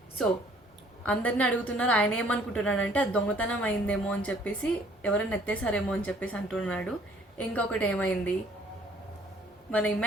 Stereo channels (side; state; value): both; normal; correlation 0.59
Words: సో అందరిని అడుగుతున్నారు. ఆయన ఏమనుకుంటున్నాడంటే అది దొంగతనం అయిందేమో అని చెప్పేసి, ఎవరైనా ఎత్తేసారేమో అని చెప్పేసి అంటున్నాడు. ఇంకొకటి ఏమైంది, మన